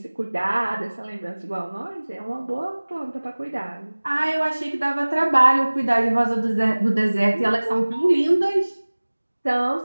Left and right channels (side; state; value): both; inverted; correlation -1.00